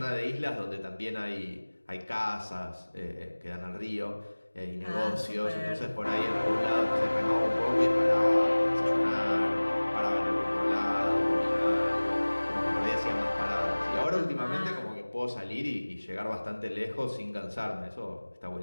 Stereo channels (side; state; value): both; inverted; correlation -1.00